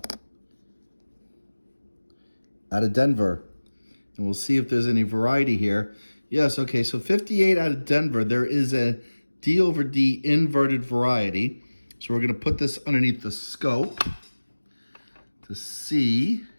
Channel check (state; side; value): inverted; both; correlation -1.00